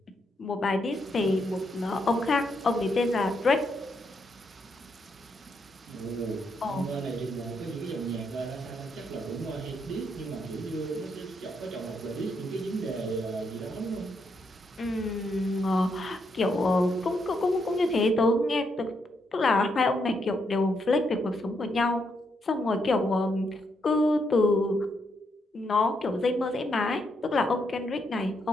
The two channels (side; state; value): both; normal; correlation 0.78